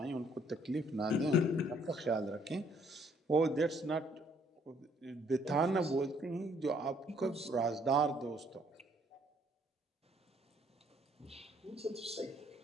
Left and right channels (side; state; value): both; normal; correlation 0.65